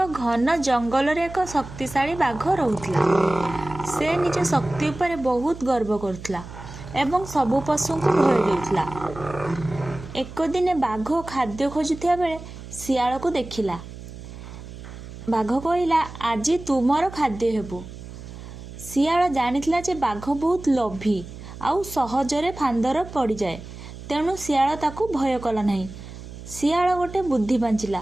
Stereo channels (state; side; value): noise; right; hum, 13 dB below the sound